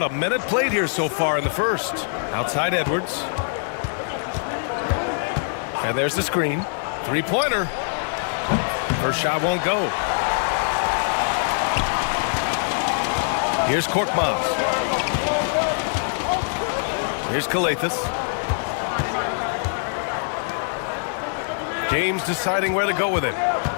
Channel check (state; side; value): silent; right; digital silence